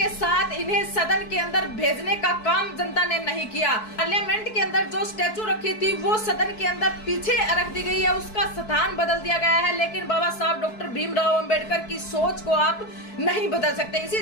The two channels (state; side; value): late; right; 4.6 ms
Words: साथ इन्हें सदन के अंदर भेजने का काम जनता ने नहीं किया। पार्लियामेंट के अंदर जो स्टैचू रखी थी वो सदन के अंदर पीछे रख दी गई है, उसका स्थान बदल दिया गया है, लेकिन बाबा साहब डॉक्टर भीमराव अम्बेडकर की सोच को आप नहीं बदल सकते।